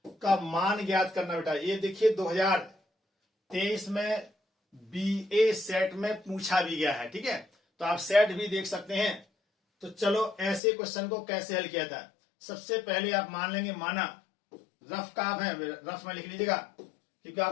का मान ज्ञात करना बेटा। ये देखिए 2023 में बीए सेट में पूछा भी गया है, ठीक है, तो आप सेट भी देख सकते हैं। तो चलो ऐसे क्वेश्चन को कैसे हल किया था। सबसे पहले आप मान लेंगे, माना रफ का आप है, रफ में लिख लीजिएगा क्योंकि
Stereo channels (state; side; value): drops out; right; at 10.6 s